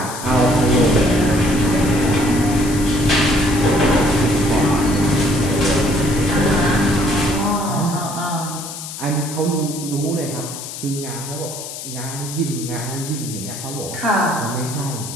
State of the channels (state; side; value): noise; left; hiss, 10 dB below the sound